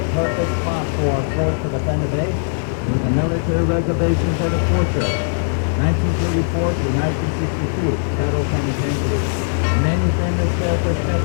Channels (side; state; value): right; silent; digital silence